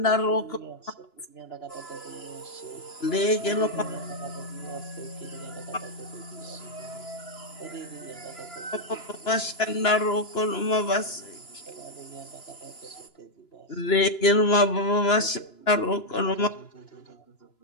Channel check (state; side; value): late; right; 2.9 ms